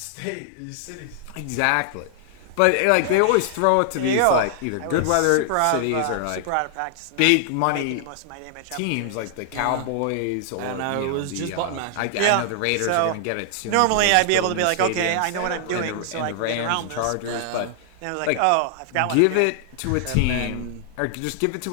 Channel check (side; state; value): both; different; correlation 0.00